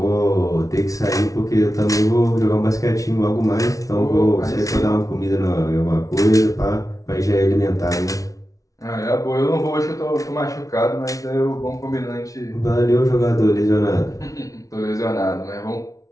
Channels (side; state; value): right; late; 0.17 ms